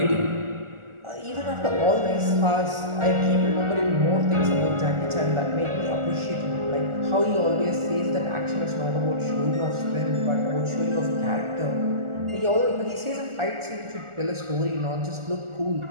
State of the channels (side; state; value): left; late; 1.4 ms